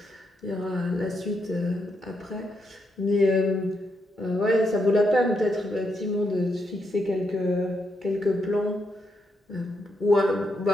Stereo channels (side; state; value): both; normal; correlation 0.81